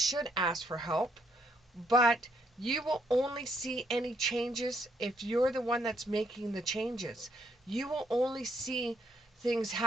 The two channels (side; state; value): both; normal; correlation 0.71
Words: ask for help, but you will only see any changes if you're the one that's making the changes. You will only see things